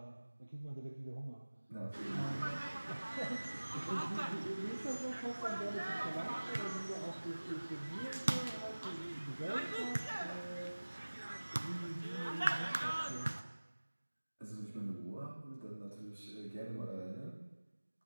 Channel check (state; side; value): inverted; both; correlation -1.00